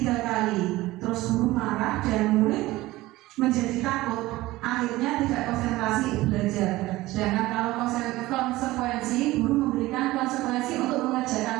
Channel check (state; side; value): quieter; left; 18.2 dB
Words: kali. Terus guru marah dan murid menjadi takut, akhirnya tidak konsentrasi belajar. Sedangkan kalau konsekuensi, guru memberikan konsekuensi untuk